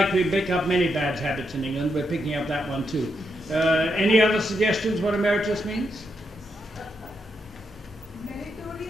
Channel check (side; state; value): both; normal; correlation 0.81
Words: we pick up many bad habits in England, we're picking up that one too. Any other suggestions what emeritus means?